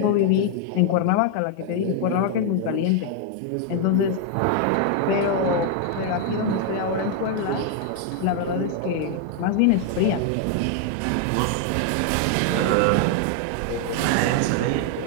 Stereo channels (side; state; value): both; different; correlation 0.00